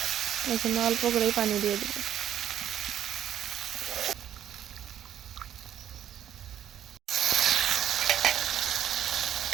এই জন্য অল্প করেই পানি দিয়ে দেবে।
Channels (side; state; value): left; quieter; 10.5 dB